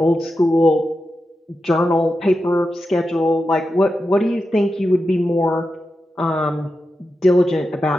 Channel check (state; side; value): normal; both; correlation 0.90